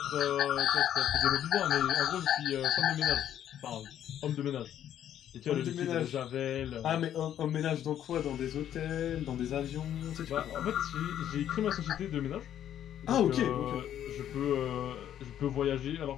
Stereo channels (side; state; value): right; quieter; 10.6 dB